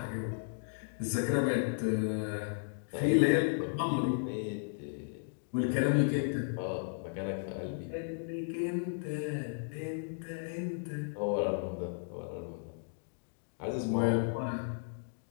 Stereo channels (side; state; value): right; silent; digital silence